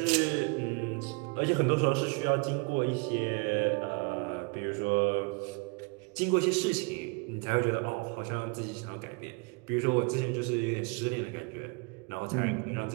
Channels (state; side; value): quieter; left; 31.3 dB